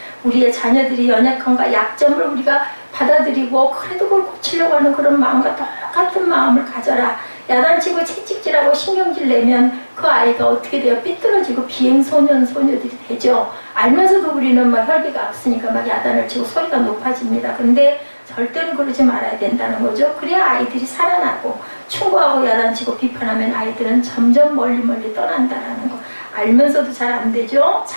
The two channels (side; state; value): both; inverted; correlation -1.00